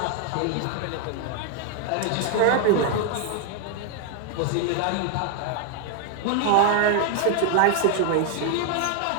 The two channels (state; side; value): different; both; correlation 0.01